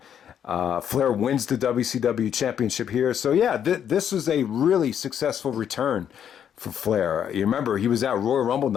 Flair wins the WCW championship here. So yeah, this was a really successful return for Flair. You remember, he was at Royal Rumble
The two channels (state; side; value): quieter; right; 9.0 dB